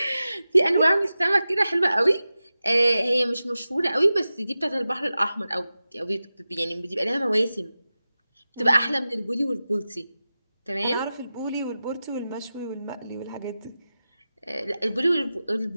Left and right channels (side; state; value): both; inverted; correlation -0.93